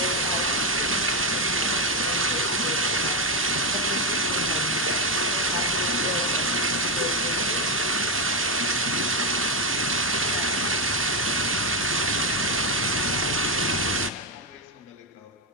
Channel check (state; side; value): normal; both; correlation 0.06